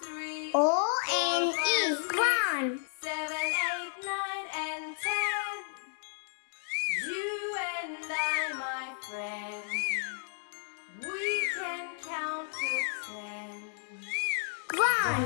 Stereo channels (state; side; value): silent; right; digital silence